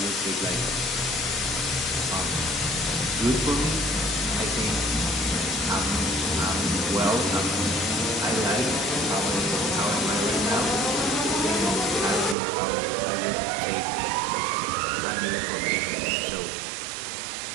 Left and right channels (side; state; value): left; drops out; at 12.4 s